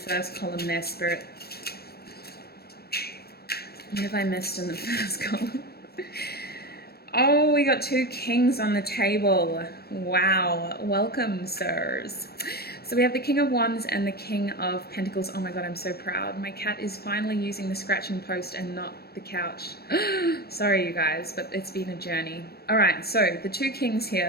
column there, Spirit? What have I missed in the first column? Oh, we got two kings on the table. Wow. Welcome, sirs. So we have the King of Wands and the King of Pentacles. Oh my God, I'm so proud. My cat is finally using the scratching post and not the couch. Sorry, you guys, but it's been a journey. All right, so the two kings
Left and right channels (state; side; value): late; right; 0.46 ms